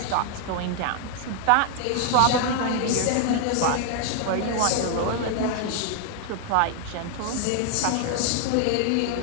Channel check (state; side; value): different; both; correlation 0.00